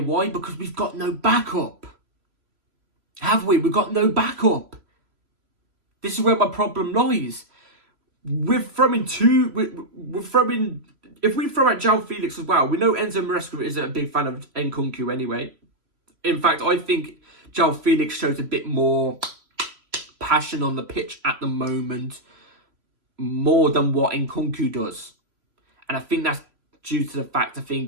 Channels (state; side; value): late; left; 3.0 ms